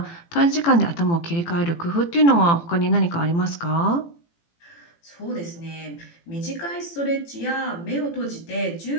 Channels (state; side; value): late; right; 18 ms